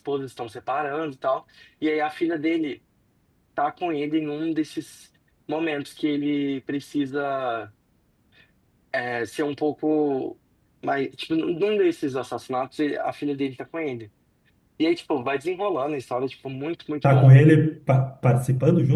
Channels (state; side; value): identical; both; correlation 1.00